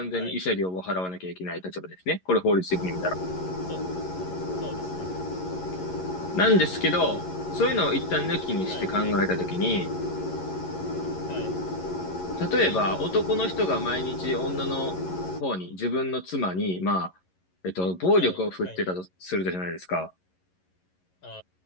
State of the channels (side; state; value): right; late; 11 ms